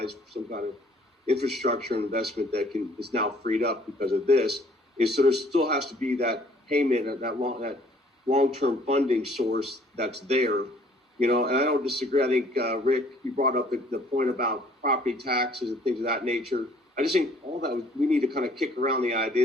for some kind of infrastructure investment that is now freed up because of this. So there still has to be that payment, that long-term funding source that's there. And I don't disagree. I think, Rick, you brought up the point about property taxes and things of that nature. I just think all that we need to kind of kick around the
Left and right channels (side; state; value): both; normal; correlation 0.58